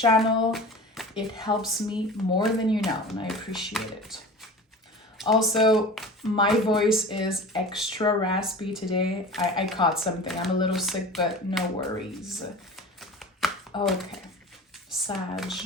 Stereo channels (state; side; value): normal; both; correlation 0.36